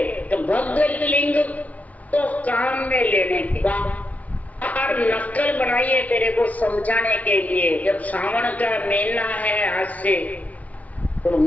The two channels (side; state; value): right; late; 0.070 ms